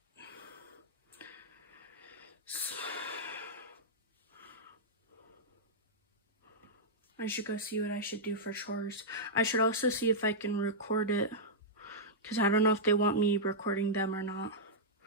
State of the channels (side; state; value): both; normal; correlation -0.10